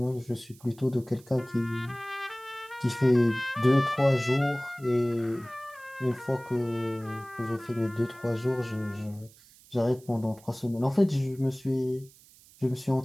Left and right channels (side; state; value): right; noise; hiss, 25 dB below the sound